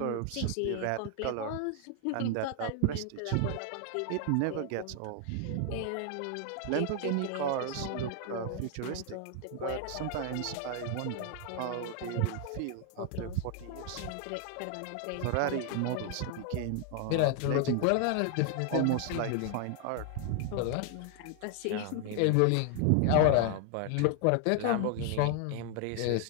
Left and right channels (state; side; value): different; both; correlation 0.00